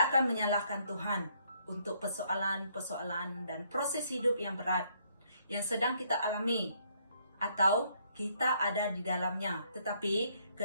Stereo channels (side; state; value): both; inverted; correlation -0.69